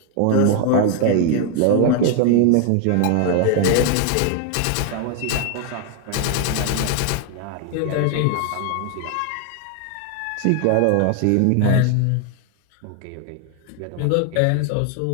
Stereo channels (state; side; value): different; both; correlation 0.01